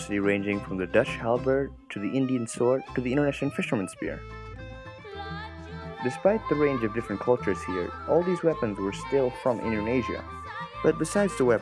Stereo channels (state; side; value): identical; both; correlation 1.00